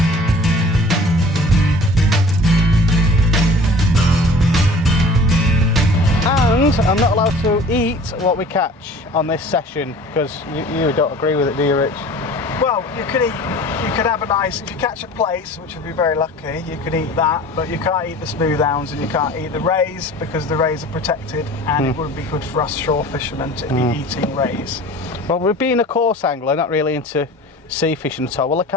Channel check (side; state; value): both; normal; correlation 0.45